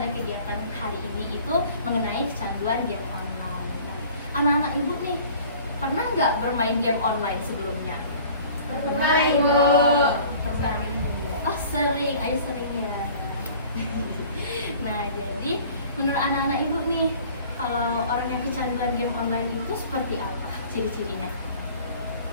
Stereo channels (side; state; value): both; inverted; correlation -0.49